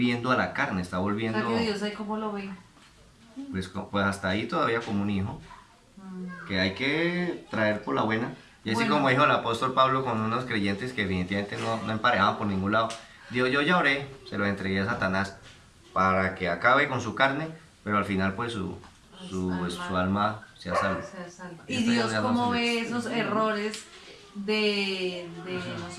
a la carne, está O volviendo, sea que Dios ahí cómo lo ve. pues hasta ahí todavía como un hijo, que hay que traer por la buena. Y así Bueno. como dijo el apóstol Pablo con unos creyentes que definitivamente no emparejaban por ningún lado, dijo, yo ya oré, se lo entregué a Satanás para que acabe con su carne, pero al final pues su alma sea salva. Se salva. Y Y esto Dios ya no cómo se ve le- esos errores de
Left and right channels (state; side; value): identical; both; correlation 1.00